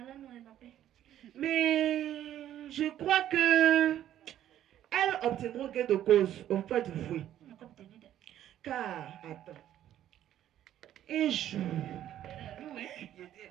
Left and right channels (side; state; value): left; quieter; 11.7 dB